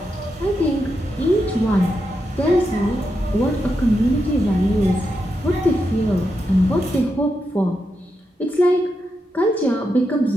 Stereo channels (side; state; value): both; normal; correlation 0.85